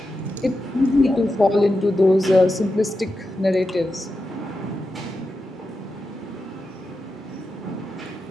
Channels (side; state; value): both; normal; correlation 0.89